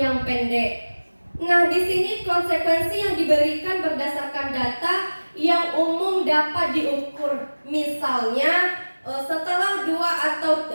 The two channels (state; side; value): inverted; both; correlation -1.00